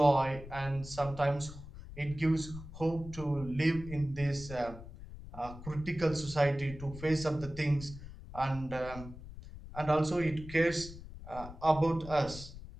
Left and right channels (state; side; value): noise; left; rumble, 14 dB below the sound